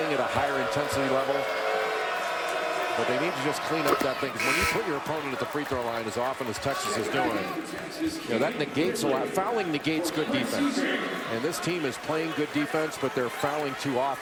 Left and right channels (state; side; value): identical; both; correlation 1.00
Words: at a higher intensity level. But they need to just clean up that thing. When you put your opponent at the free throw line as often as Texas is doing, that negates a lot. Fouling negates good defense. And this team is playing good defense, but they're fouling too